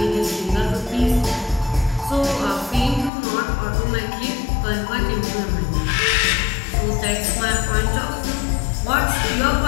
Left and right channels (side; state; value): right; drops out; at 3.1 s